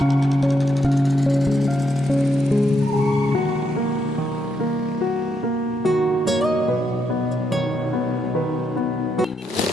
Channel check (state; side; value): normal; both; correlation 0.79